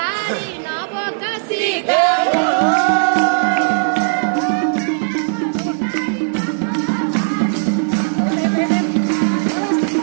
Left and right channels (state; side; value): silent; left; digital silence